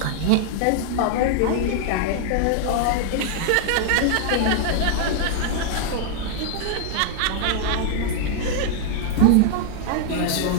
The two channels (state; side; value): different; both; correlation 0.00